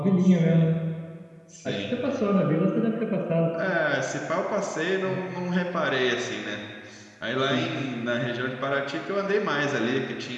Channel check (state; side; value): identical; both; correlation 1.00